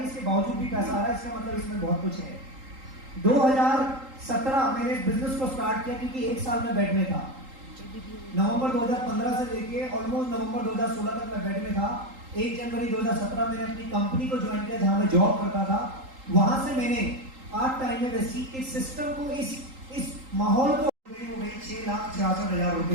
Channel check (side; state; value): left; late; 3.8 ms